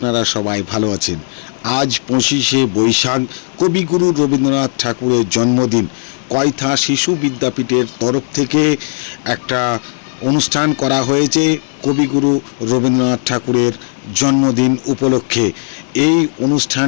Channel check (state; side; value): silent; right; digital silence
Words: সবাই ভালো আছেন। আজ 25শে বৈশাখ কবিগুরু রবীন্দ্রনাথ ঠাকুরের জন্মদিন। কয়থা শিশু বিদ্যাপীঠের তরফ থেকে একটা অনুষ্ঠান করা হয়েছে কবিগুরু রবীন্দ্রনাথ ঠাকুরের জন্মদিন উপলক্ষে। এই